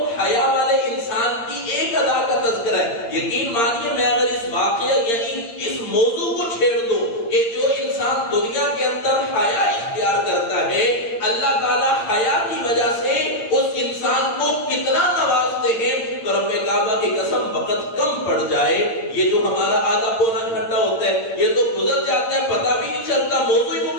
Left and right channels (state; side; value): late; right; 8.8 ms